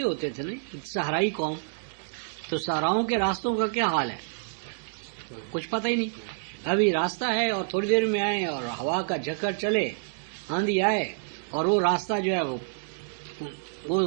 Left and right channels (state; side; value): silent; left; digital silence